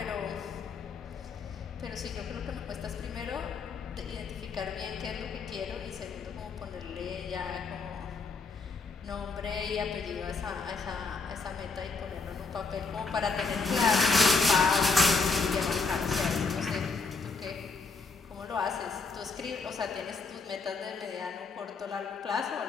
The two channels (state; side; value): quieter; right; 4.4 dB